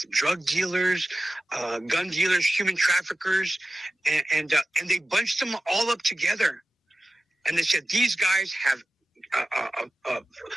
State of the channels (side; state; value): both; normal; correlation 0.94